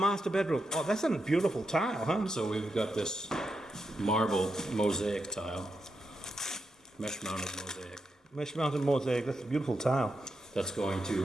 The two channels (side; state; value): both; normal; correlation 0.85